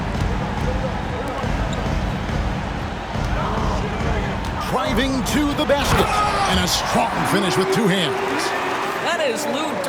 Driving to the basket. And a strong finish with 2 hands. That is Lou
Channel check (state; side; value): identical; both; correlation 1.00